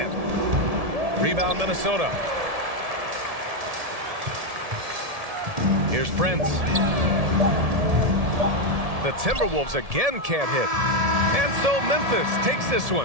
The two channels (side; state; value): left; late; 1.7 ms